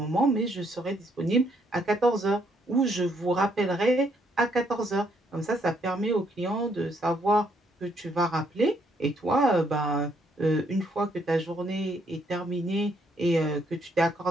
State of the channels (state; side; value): normal; both; correlation 0.71